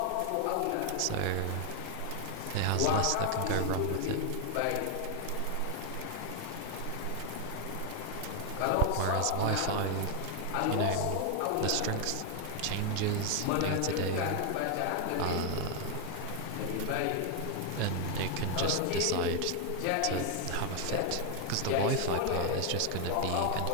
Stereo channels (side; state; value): both; different; correlation 0.00